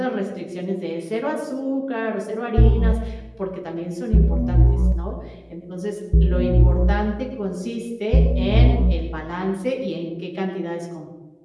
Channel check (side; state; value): both; identical; correlation 1.00